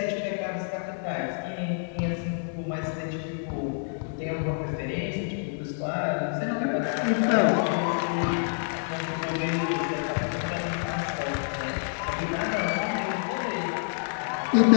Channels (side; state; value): right; silent; digital silence